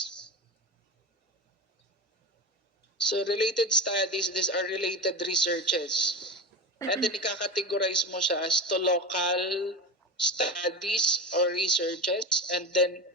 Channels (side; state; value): both; normal; correlation 0.26